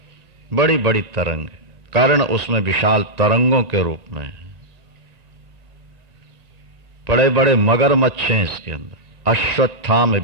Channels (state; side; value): late; left; 1.9 ms